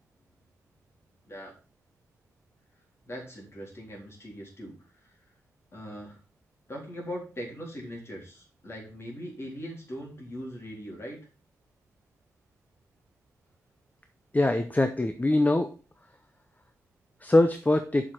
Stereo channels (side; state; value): both; normal; correlation 0.94